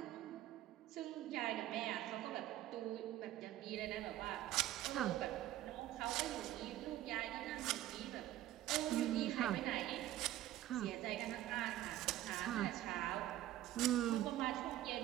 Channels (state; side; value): quieter; left; 13.8 dB